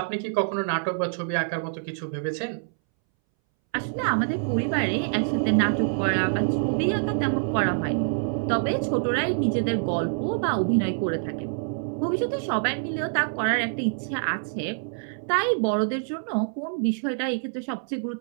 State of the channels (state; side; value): silent; left; 61 dB below the other